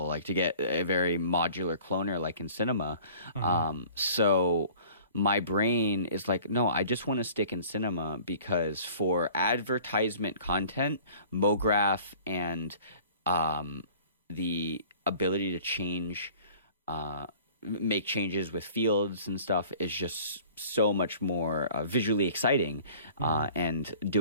like to get a very modular cloner like in Cinema. So... my brain is like, no, I just want to stick in Cinema, because for advertisement content, Mograph and the ability to make changes with fields and stuff is just so much more visually exciting. And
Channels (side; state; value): both; inverted; correlation -0.49